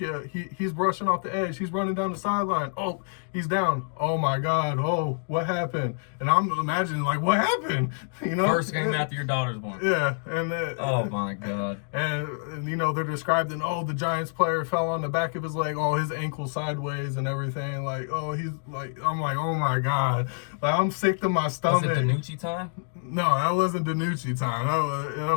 he's rushing off the edge. He's running down the sideline. Oh, he's down. Oh my God. Oh, what happened? And I'm imagining like, what happened? First game after your daughter's born. Yeah. And oh my God. And they're describing, the Giants player fell on the back of his leg. Oh, his ankle sideways and everything. Like, he's like, I'm like, oh my God. Like, I'm sick to my stomach. Was it DiNucci time? No, that wasn't DiNucci time. That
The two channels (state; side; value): silent; right; digital silence